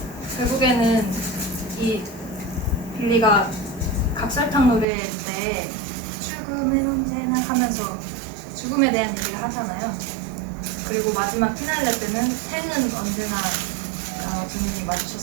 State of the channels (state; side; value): drops out; left; at 4.9 s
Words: 결국에는 이 빌리가 각설탕 노래 때 출금은 언제나 하면서 죽음에 대한 얘기를 하잖아요. 그리고 마지막 피날레 때는 생은 언제나 두 눈이